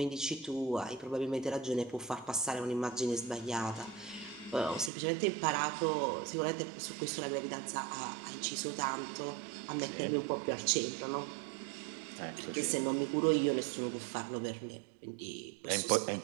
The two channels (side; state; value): left; drops out; at 4.9 s